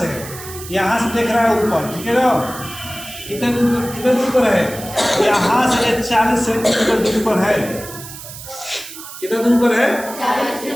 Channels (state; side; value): noise; right; hiss, 13 dB below the sound